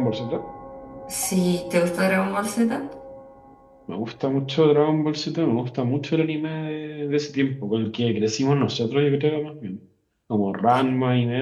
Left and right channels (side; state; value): both; identical; correlation 1.00